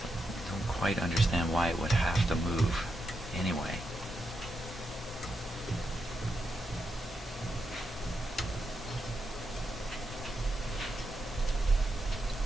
Quite understand why it would have to move anyway.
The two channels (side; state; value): both; normal; correlation 0.85